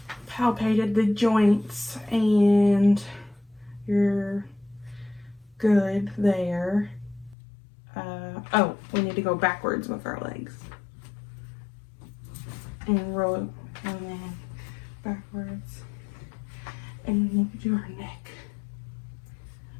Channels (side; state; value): right; drops out; at 7.4 s